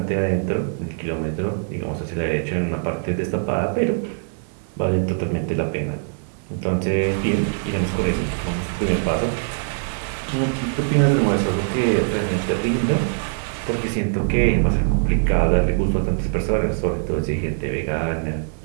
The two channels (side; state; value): left; silent; 59 dB below the other